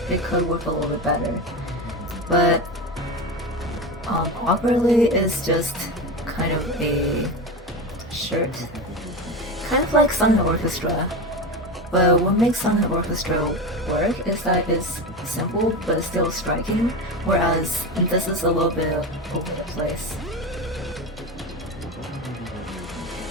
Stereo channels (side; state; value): both; normal; correlation 0.22